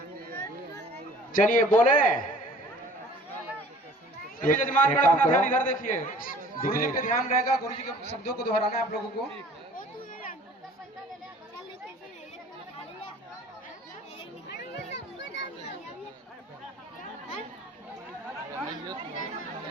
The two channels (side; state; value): both; normal; correlation 0.50